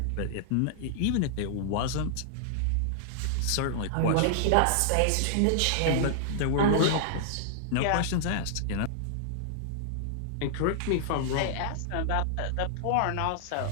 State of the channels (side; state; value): both; different; correlation -0.01